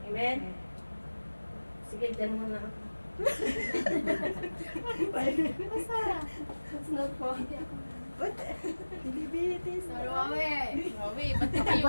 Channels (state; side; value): inverted; both; correlation -1.00